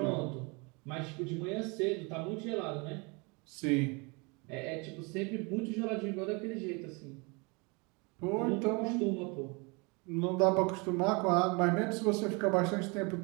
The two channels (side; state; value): left; quieter; 29.7 dB